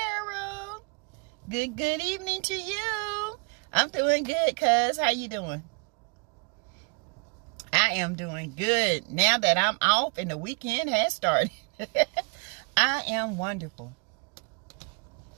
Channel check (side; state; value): left; quieter; 35.5 dB